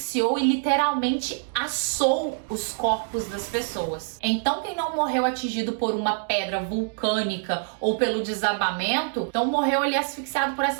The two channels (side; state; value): left; silent; 61 dB below the other